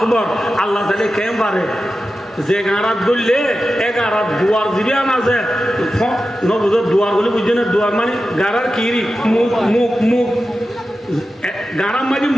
তাহলে কেম পারে যে গাঁড়াত বললে এ গাঁড়াত দুয়ার দিবে আছে নবুজর দুয়ার বলে বুঝছে না দুয়ার মানে গাঁড়ার কিরি মুখ গাঁড়ার মাঝে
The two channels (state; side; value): normal; both; correlation 0.92